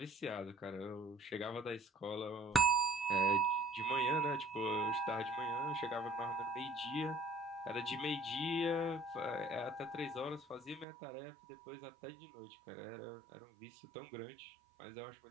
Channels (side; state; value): left; drops out; at 10.9 s